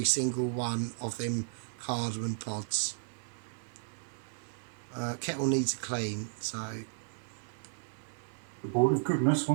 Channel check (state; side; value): silent; left; 55 dB below the other